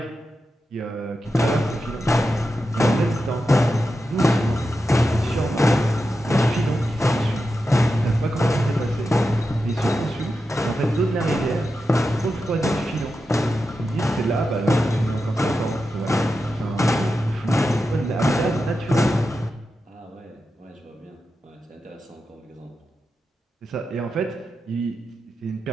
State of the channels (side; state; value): both; normal; correlation 0.90